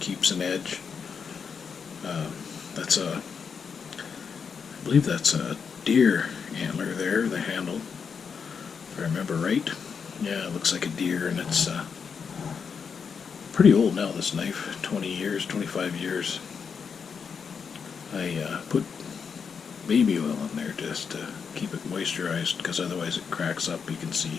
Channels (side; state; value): right; quieter; 6.2 dB